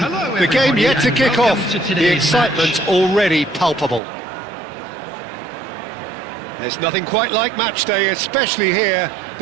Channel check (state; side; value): drops out; left; at 4.0 s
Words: Hello, The game everybody, yet to and kick welcome off. to The today's excitement match. already palpable. There's nothing quite like match day, especially here.